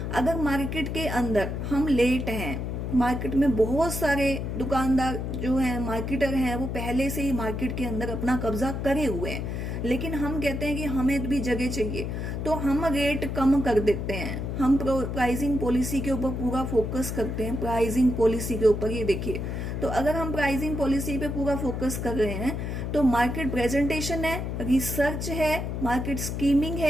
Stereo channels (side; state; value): left; noise; hum, 3 dB below the sound